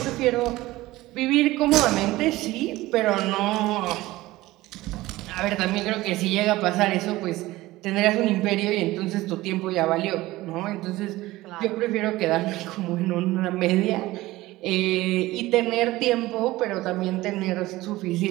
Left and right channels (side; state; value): left; quieter; 18.1 dB